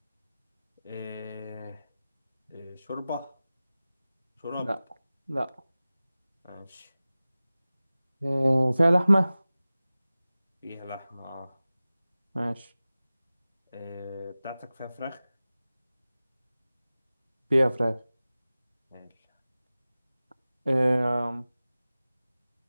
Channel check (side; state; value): both; inverted; correlation -0.97